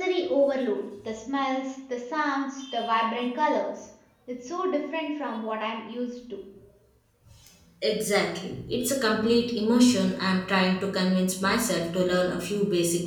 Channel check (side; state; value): both; identical; correlation 1.00